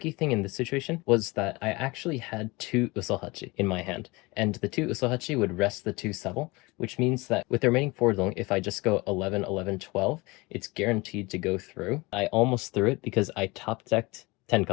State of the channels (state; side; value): quieter; right; 24.1 dB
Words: thing in this situation was that I actually had 2 Usohachi in my hand, and the 2 Usohachi would rest the 2 sub, which means that with the remaining 4 Dong, if I just go 11, 11, 12, it's guaranteed to go through. I almost threw it because I top decked 10